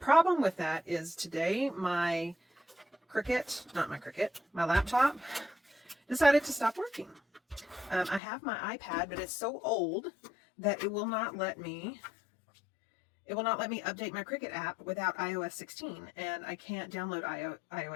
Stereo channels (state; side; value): drops out; right; at 8.2 s